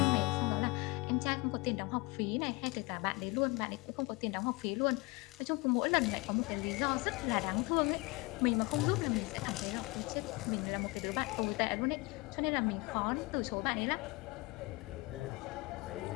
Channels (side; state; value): right; quieter; 25.2 dB